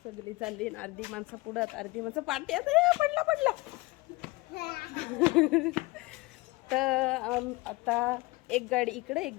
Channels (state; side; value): quieter; right; 22.9 dB